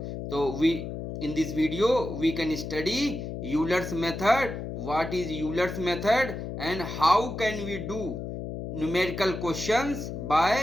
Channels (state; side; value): noise; left; hum, 6 dB below the sound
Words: तो we in this video we can study Euler's method, what is Euler's method and how can we do numerical questions